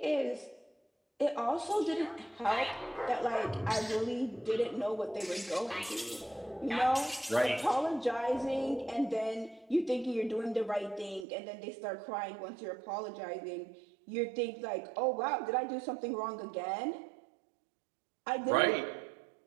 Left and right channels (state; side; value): drops out; left; at 11.2 s